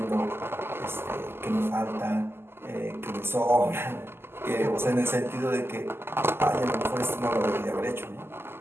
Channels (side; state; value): left; late; 0.12 ms